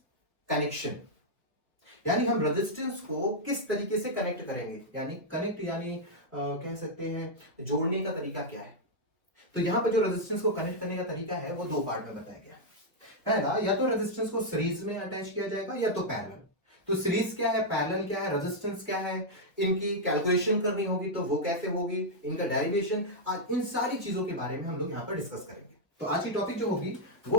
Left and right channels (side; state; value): both; normal; correlation -0.04